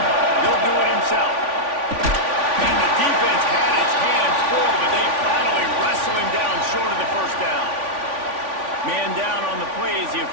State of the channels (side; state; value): left; late; 3.5 ms